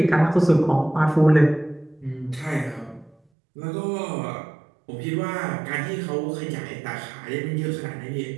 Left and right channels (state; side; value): drops out; left; at 3.2 s